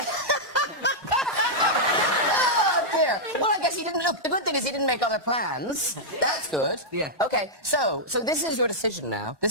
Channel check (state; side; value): late; left; 1.1 ms